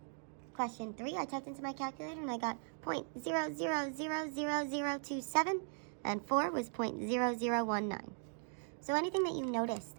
Question 3, I typed into my calculator and I got 0.000027, and 4 was 0.0019. So anything that you noticed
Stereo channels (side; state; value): left; silent; 52 dB below the other